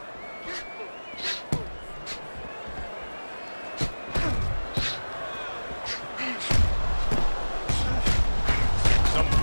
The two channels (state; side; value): inverted; both; correlation -1.00